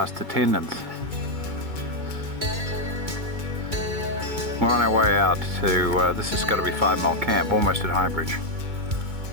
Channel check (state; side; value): late; left; 2.3 ms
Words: attendants. We're on our way out to, this has got to be 5 Mile Camp, almost at Highbridge.